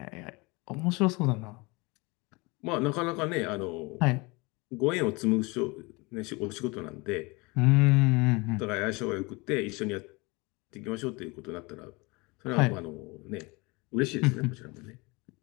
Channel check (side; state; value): right; quieter; 26.2 dB